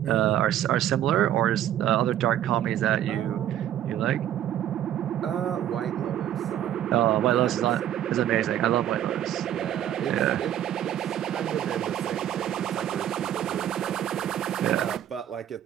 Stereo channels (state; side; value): quieter; left; 11.3 dB